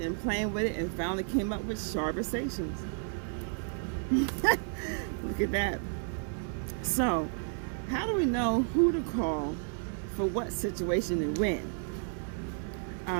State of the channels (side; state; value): left; silent; 56 dB below the other